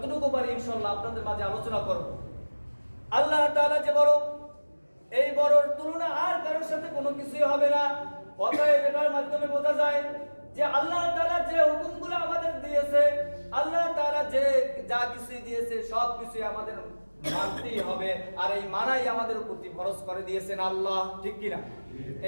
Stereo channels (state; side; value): inverted; both; correlation -1.00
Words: পারি ইনশাআল্লাহ আপনাদের মাঝে আলোচনা করব। আল্লাহ তাআলা যে বড়, এই বড়র তুলনা আর কারোর সাথে কোনো কিছুই হবে না। অতএব এটার মাধ্যমে বোঝা যায় যে আল্লাহ তাআলা যে হুকুমগুলো আমাদের দিয়েছে, আল্লাহ তাআলা যে যা কিছু দিয়েছে সব কিছুই আমাদের মানতেই হবে। আর এই মানাই আমাদের প্রতি ফরজ করে দিয়েছেন আল্লাহ, ঠিক কিনা?